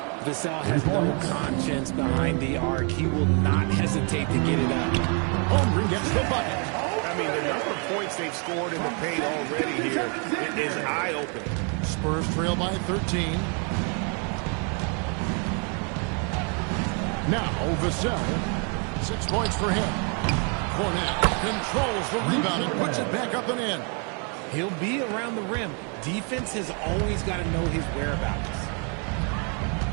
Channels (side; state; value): left; quieter; 37.2 dB